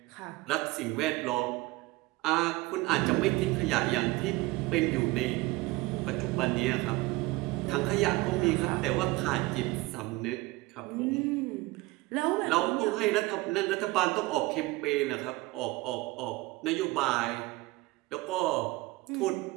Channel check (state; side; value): quieter; left; 21.1 dB